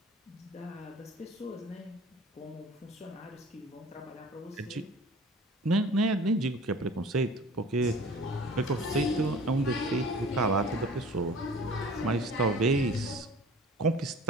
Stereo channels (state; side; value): normal; both; correlation 0.43